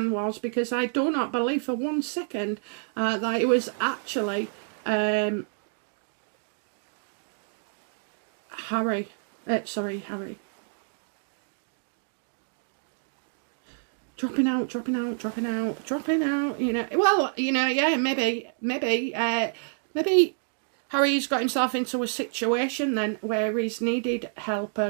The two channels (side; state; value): left; silent; digital silence